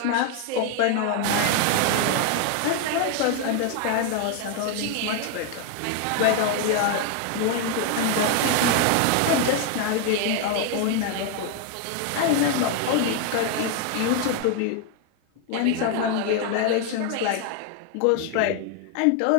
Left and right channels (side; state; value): both; different; correlation 0.01